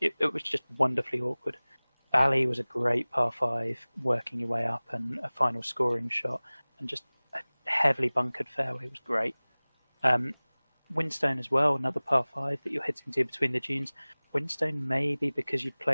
it was just wonderfully awkward. Bally was a great par 5, working your way up, and a final scoring shot, and just a heavily bunkered fairway was great. Windstone as well, another par 5 that you're hitting to between the dunes. Windstone, maybe because you'd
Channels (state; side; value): inverted; both; correlation -1.00